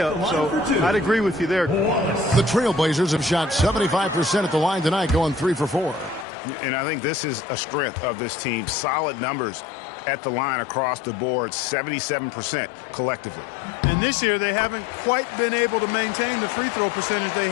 so I'd agree with you there. The Trailblazers have shot 75% at the line tonight, going 3 for 4. And I think this is a strength of this team. Solid numbers at the line across the board, 77% collectively. And this year, they haven't quite been able to maintain the free throw percentage they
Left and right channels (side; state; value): right; drops out; at 6.2 s